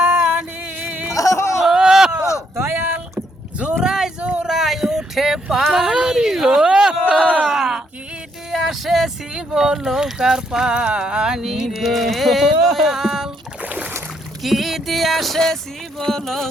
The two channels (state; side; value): normal; both; correlation 0.73